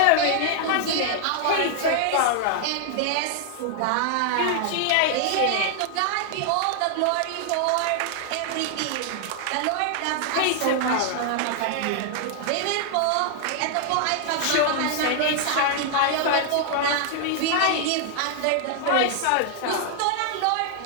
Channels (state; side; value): different; both; correlation 0.00